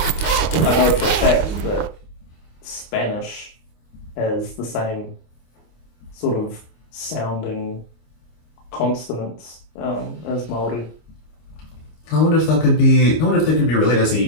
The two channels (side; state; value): right; late; 25 ms